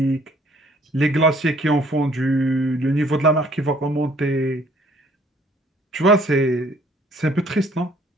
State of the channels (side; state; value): both; normal; correlation 0.60